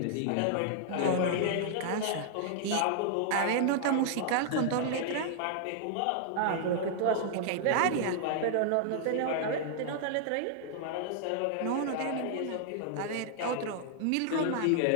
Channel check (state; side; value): different; both; correlation -0.01